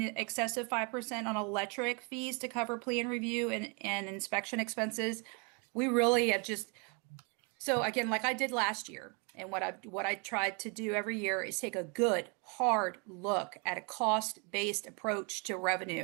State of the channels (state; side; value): quieter; left; 33.2 dB